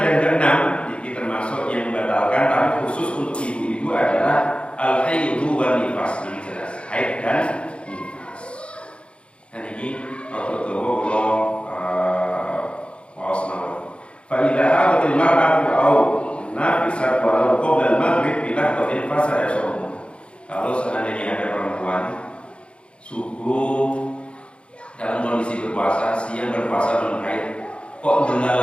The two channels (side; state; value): right; late; 0.058 ms